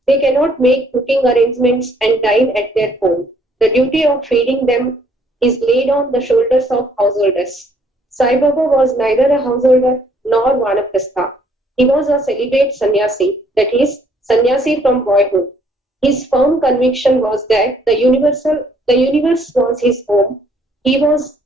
They cannot make cooking arrangements and dine at their home. The duty of feeding them is laid on the shoulders of householders. Sai Baba was neither a householder nor vanaprastha. He was a celibate sannyasi, that is, sannyasi from boyhood. His firm conviction was that the universe was his home. He was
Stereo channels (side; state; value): both; normal; correlation 0.64